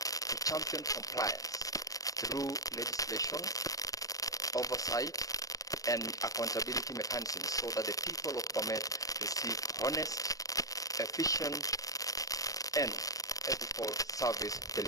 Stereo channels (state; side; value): late; right; 0.17 ms